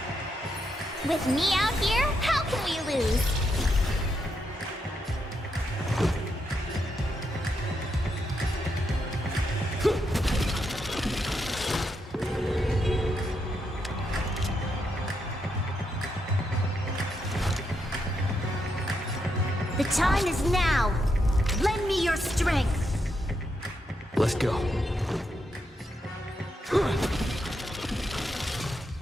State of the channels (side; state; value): both; normal; correlation 0.81